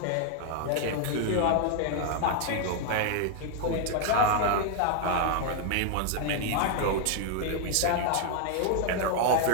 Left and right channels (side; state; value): both; different; correlation 0.00